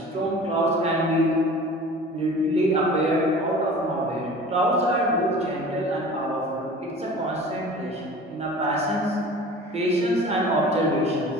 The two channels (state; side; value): normal; both; correlation 0.41